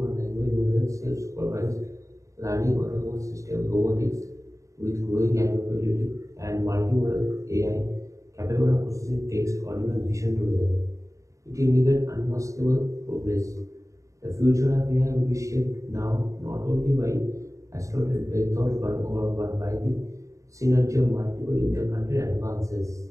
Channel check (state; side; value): late; left; 0.15 ms